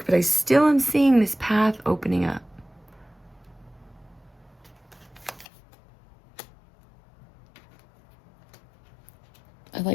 but I still am seeing this path opening up. I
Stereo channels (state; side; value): drops out; right; at 5.5 s